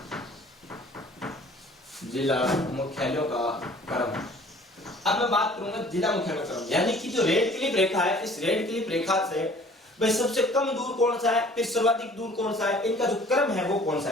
अब मैं बात करूंगा जिला मुख्यालय का क्रम। यानी कि जो रेड क्लिफ रेखा है, इस रेड क्लिफ रेखा से भाई सबसे कम दूर कौन सा है, फिर सर्वाधिक दूर कौन सा है, इनका जो क्रम है वो कौन सा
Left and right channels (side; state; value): both; normal; correlation 0.51